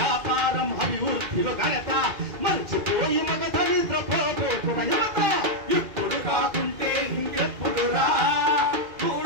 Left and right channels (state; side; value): late; left; 2.3 ms